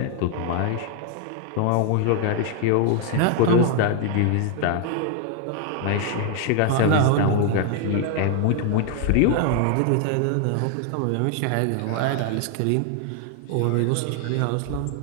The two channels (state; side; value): different; both; correlation 0.00